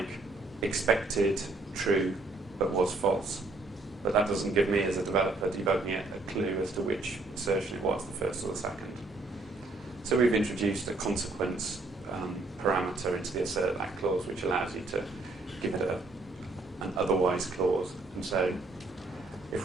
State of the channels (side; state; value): left; quieter; 3.2 dB